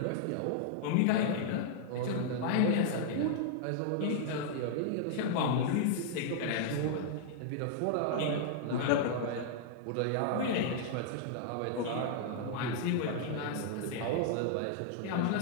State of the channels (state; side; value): different; both; correlation -0.01